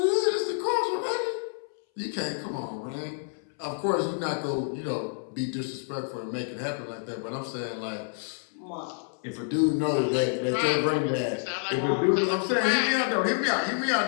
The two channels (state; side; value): silent; right; 59 dB below the other